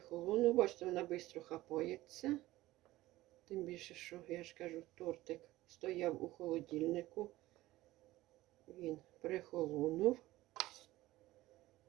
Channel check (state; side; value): quieter; left; 17.1 dB